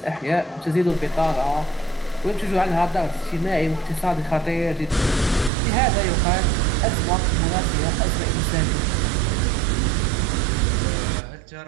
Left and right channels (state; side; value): drops out; left; at 5.5 s